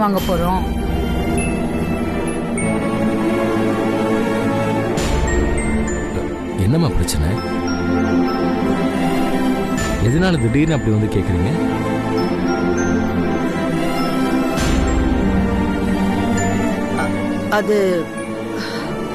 போறோம்? என்னம்மா பிரச்சனை? எதனால திடீர்னு அப்படி வந்து கேக்குறீங்க? அது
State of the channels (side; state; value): both; identical; correlation 1.00